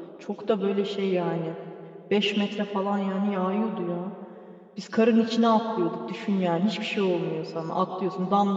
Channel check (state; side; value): identical; both; correlation 1.00